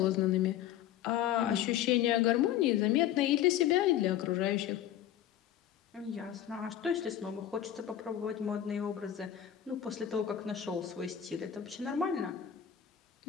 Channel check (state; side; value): quieter; right; 10.8 dB